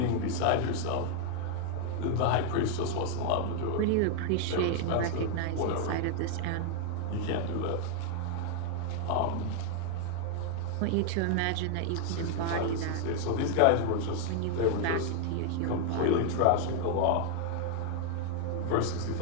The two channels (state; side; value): different; both; correlation 0.00